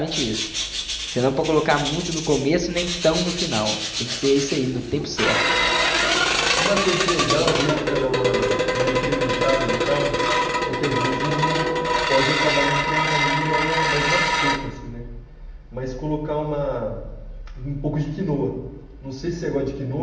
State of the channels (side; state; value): both; identical; correlation 1.00